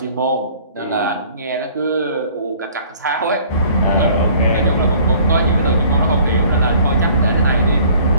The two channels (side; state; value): both; inverted; correlation -0.53